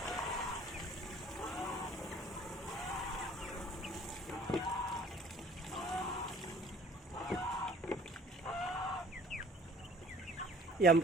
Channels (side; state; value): both; normal; correlation 0.53